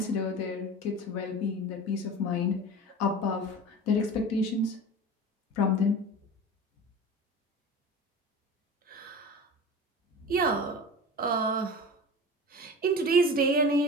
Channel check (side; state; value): both; normal; correlation 0.33